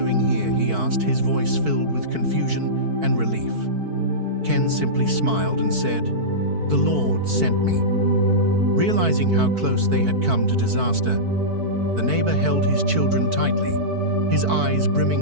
here?" he asked, his voice filled with confusion and relief. Ken simply smiled and said, "The Lord sent me." Realizing how close they had come to disaster, the neighbor held his children tightly, his eyes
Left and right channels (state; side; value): late; left; 4.5 ms